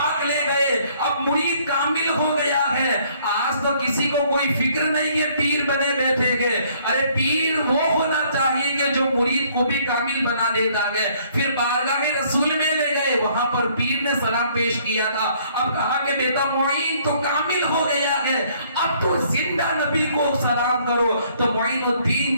لے گئے، اب مرید کامل ہو گیا ہے۔ آج تو کسی کو کوئی فکر نہیں کہ پیر بنے بیٹھے گئے، ارے پیر وہ ہونا چاہیے کہ جو مرید کو بھی کامل بنا دیتا ہے۔ پھر بارگاہ رسول میں لے گئے، وہاں پر پیر نے سلام پیش کیا تھا، اب کہا کہ بیٹا معین تو کامل ہو گیا ہے، اب تو زندہ نبی کو سلام کرو۔ تو معین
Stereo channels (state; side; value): inverted; both; correlation -0.63